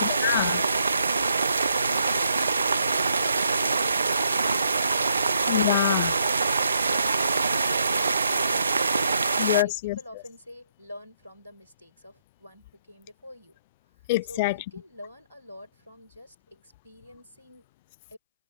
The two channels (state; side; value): inverted; both; correlation -0.73